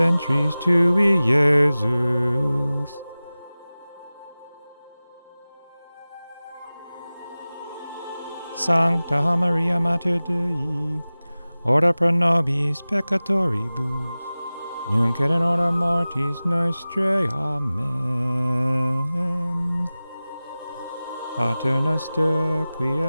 tui, Iesus. Sancta Maria Mater Dei, ora pro nobis peccatoribus, nunc et in hora mortis nostrae. Amen. Pater noster, qui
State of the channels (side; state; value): both; inverted; correlation -0.97